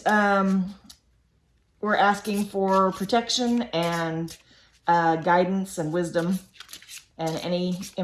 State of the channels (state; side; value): identical; both; correlation 1.00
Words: we're asking for protection and guidance and wisdom and any